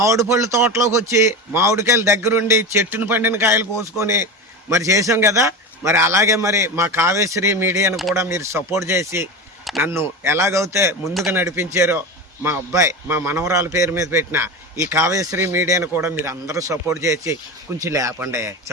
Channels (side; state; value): both; normal; correlation 0.24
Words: పళ్ళు తోటలోకి వచ్చి మామిడికాయలు దగ్గరుండి చెట్టును పండిన కాయలు కోసుకొని మరి చేసాం కదా. మరి అలాగే మరి మా కావ్యశ్రీ మీడియాను కూడా మీరు సపోర్ట్ చేసి నన్ను ఎలాగైతే ముందుకు నడిపించారో మా అబ్బాయి మా మనవరాల పేరు మీద పెట్టిన ఈ కావ్యశ్రీ మీడియాను కూడా మీరు అందరూ సపోర్ట్ చేసి కొంచెం లేపండి